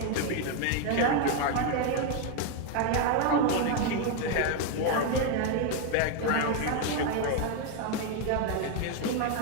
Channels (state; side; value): different; both; correlation 0.01